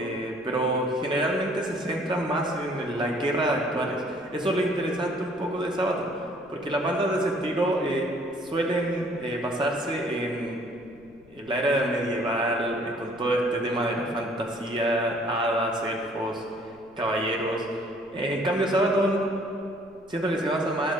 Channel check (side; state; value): left; noise; rumble, 28 dB below the sound